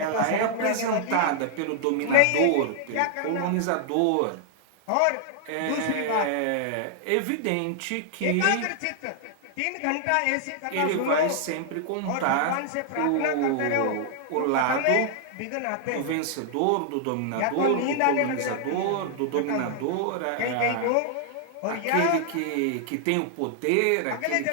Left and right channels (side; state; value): both; different; correlation 0.00